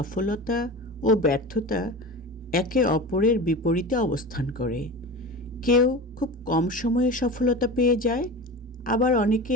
ও ব্যর্থতা একে অপরের বিপরীতে অবস্থান করে। কেউ খুব কম সময়ে সফলতা পেয়ে যায়, আবার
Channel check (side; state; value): both; normal; correlation 0.31